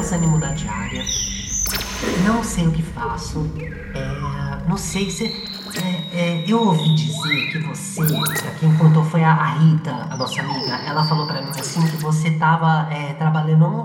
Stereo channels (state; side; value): identical; both; correlation 1.00